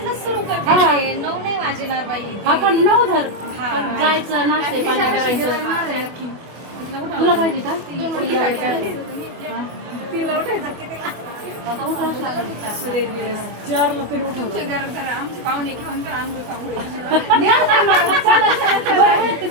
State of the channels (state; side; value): late; left; 24 ms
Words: सुरू करते. 9 नाही वाजणार बाई. आपण 9 धर जायचं नाश्ते पाणी करायचं तुला पाहिजे का तिला उठायचं कितीला? आता उठावंच लागेल. आमचे पाहुणे घेऊन तर आंघोळ